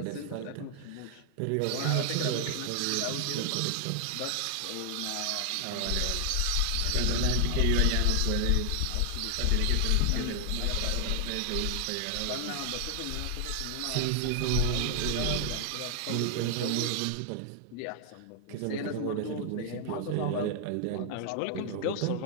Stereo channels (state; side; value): different; both; correlation 0.00